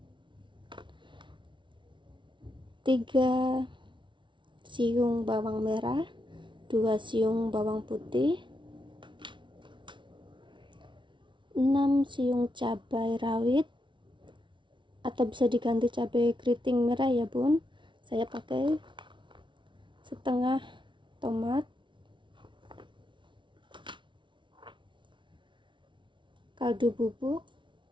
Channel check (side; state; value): left; late; 0.24 ms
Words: 3 siung bawang merah, 2 siung bawang putih, 6 siung cabai rawit atau bisa diganti cabai keriting merah ya Bun. Saya pakai setengah tomat, kaldu bubuk,